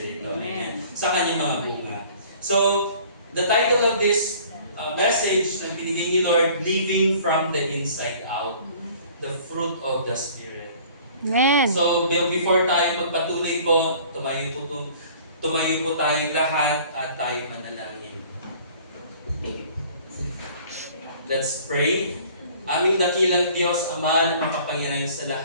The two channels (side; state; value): both; inverted; correlation -0.51